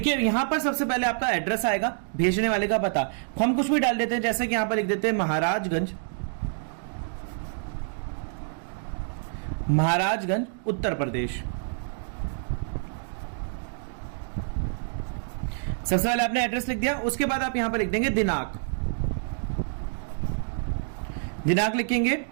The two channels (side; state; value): left; silent; digital silence